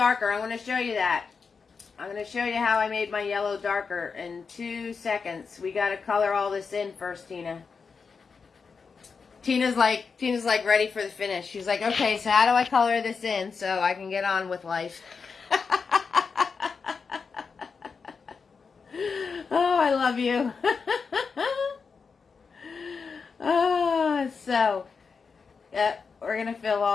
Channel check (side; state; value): right; quieter; 5.3 dB